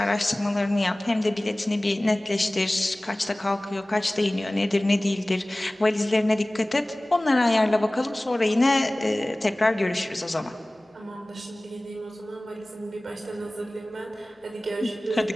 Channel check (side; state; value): both; normal; correlation 0.98